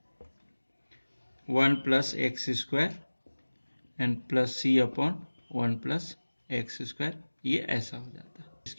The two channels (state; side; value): inverted; both; correlation -1.00